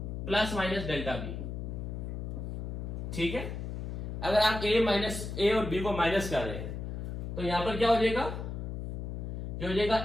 plus minus delta b, ठीक है। अगर आप a और b को माइनस कर रहे हैं तो यहां पर क्या हो जाएगा, जो हो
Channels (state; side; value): noise; left; hum, 5 dB below the sound